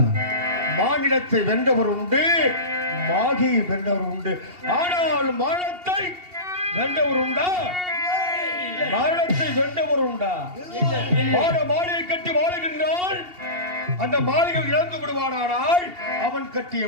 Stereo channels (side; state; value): left; late; 2.8 ms